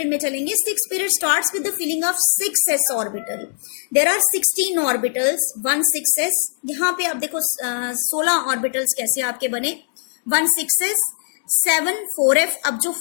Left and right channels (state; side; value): silent; right; digital silence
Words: में चलेंगे। Sixth period starts with the filling of 6s orbital. There are 16 orbitals, 1 6s। यहाँ पे आप देखो 16 ऑर्बिटल्स कैसे आपके बने, 1 6s, 7 4F। अब जो